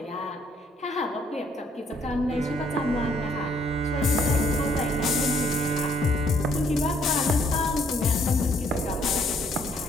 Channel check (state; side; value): normal; both; correlation 0.66